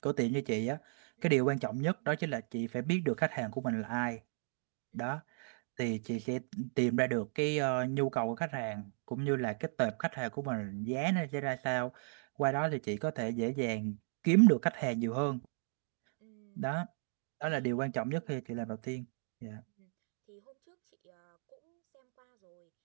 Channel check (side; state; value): left; silent; 54 dB below the other